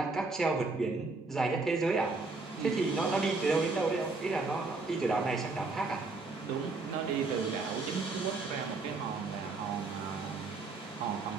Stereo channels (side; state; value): left; quieter; 3.7 dB